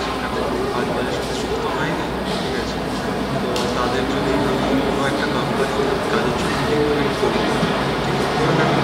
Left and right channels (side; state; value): both; identical; correlation 1.00